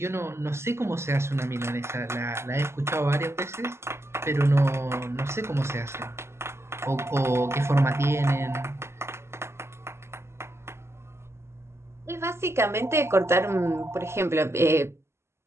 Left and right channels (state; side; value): late; left; 0.13 ms